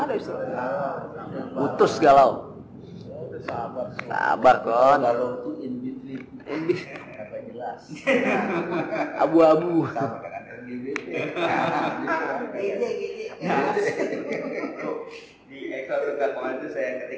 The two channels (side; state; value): both; identical; correlation 1.00